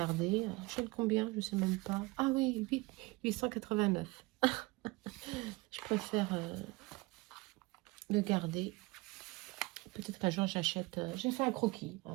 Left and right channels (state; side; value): quieter; left; 23.6 dB